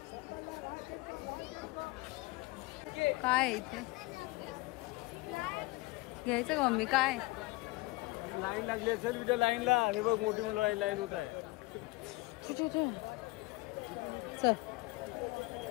काय इथे घ्यायचं का मम्मी? काय लाईन लागली असेल तिथे लाईनला. हे बघ मोठी मुलं लाईन होत आहे. चल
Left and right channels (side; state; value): right; quieter; 22.5 dB